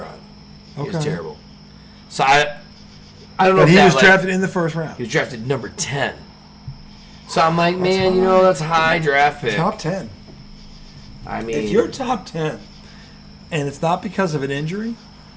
He Okay. was terrible. So I don't know but if he was drafted in the first round. He was drafted number 10. So I'm like, man, that's a high draft pick. Top 10. I mean, if you're top 10 and it's not because of an injury,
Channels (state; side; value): identical; both; correlation 1.00